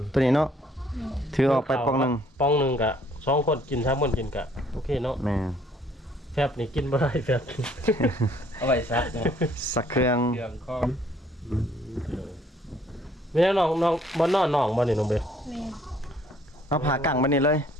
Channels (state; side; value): normal; both; correlation 0.62